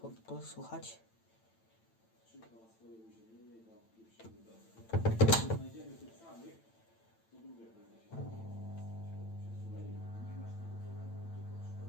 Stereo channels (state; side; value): late; right; 8.9 ms